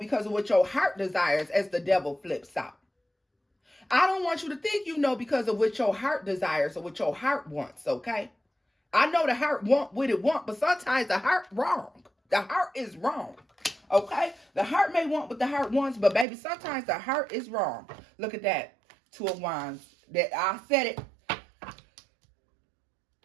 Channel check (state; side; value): drops out; left; at 16.2 s